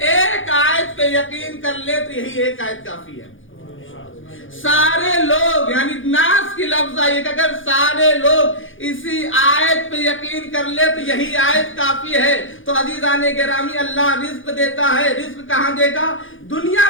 آیت پہ یقین کر لے تو یہی ایک آیت کافی ہے۔ سارے لوگ، یعنی ناس کی لفظ آئیے کہ اگر سارے لوگ اسی آیت پہ یقین کر لے تو یہی آیت کافی ہے۔ تو عزیزان گرامی، اللہ رزق دیتا ہے، رزق کہاں دے گا؟ دنیا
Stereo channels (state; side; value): late; right; 0.58 ms